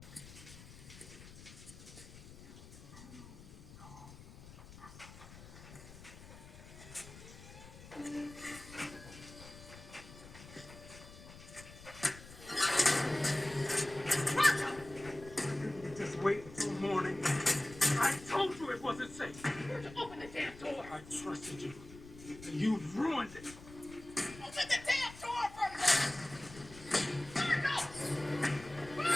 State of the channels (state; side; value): noise; left; rumble, 17 dB below the sound